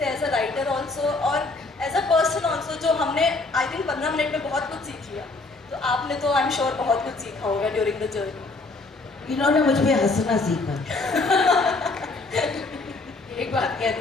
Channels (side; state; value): right; quieter; 3.4 dB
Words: थे एज अ राइटर ऑल्सो और एज अ पर्सन ऑल्सो, जो हमने आई थिंक 15 मिनट में बहुत कुछ सीख लिया। तो आपने तो आई एम श्योर बहुत कुछ सीखा होगा ड्यूरिंग द जर्नी। इन्होंने मुझ पे हंसना सीखा। एक बात